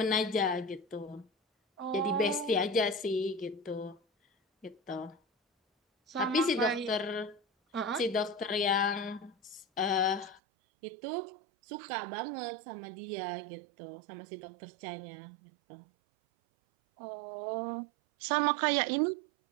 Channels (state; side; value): drops out; left; at 10.4 s